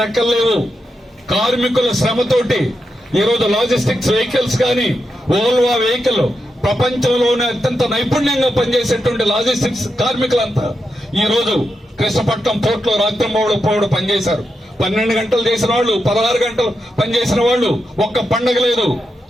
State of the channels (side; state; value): both; normal; correlation 0.86